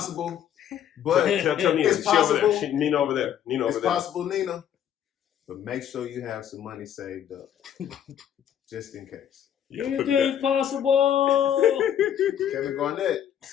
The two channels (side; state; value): right; quieter; 9.8 dB